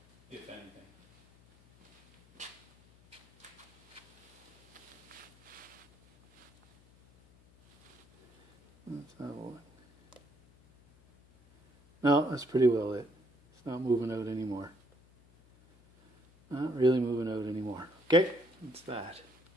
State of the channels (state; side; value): noise; left; hum, 28 dB below the sound